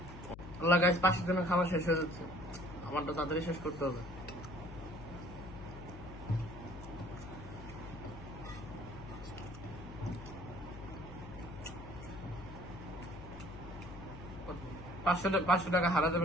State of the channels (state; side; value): noise; left; hum, 13 dB below the sound